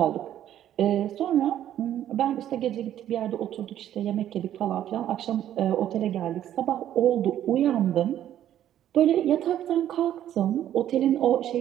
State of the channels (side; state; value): left; quieter; 11.4 dB